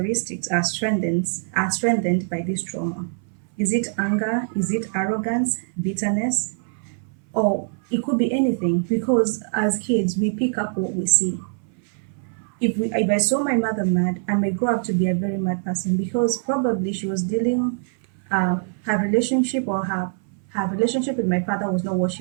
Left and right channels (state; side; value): silent; left; 59 dB below the other